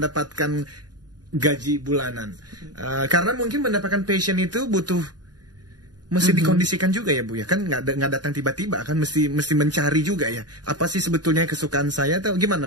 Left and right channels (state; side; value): late; left; 0.69 ms